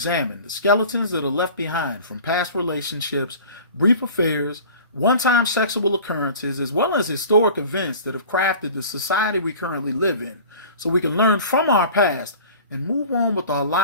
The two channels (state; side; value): inverted; both; correlation -0.42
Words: the skeletons that are left behind from past relationships, brief affairs, one-time sexual occurrences, as well as historic events that have crafted the society we currently live in, so we can learn from our past and move on with our